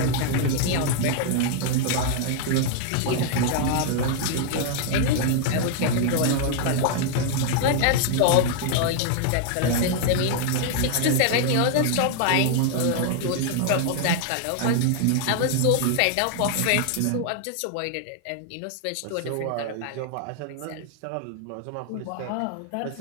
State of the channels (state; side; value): different; both; correlation 0.00